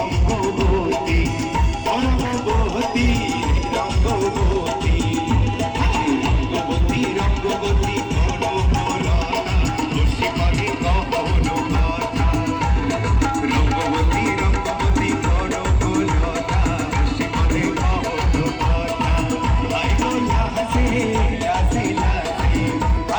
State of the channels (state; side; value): identical; both; correlation 1.00